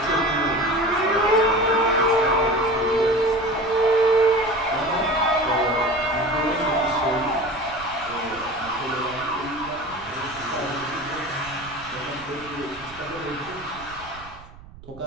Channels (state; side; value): noise; right; rumble, 20 dB below the sound